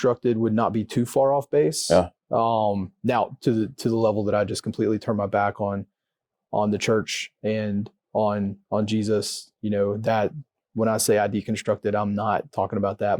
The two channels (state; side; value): identical; both; correlation 1.00